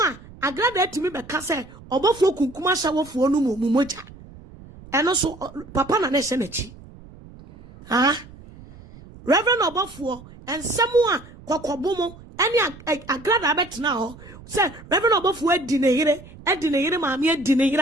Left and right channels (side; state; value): right; noise; rumble, 19 dB below the sound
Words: agrada etimi be ka say obofo kunkuma shawofo no moja. And also, Papa na nese nechi. Reverend Obafuo and someone kokobomo any agrada bet now. Say Reverend Obafuo edineyire maami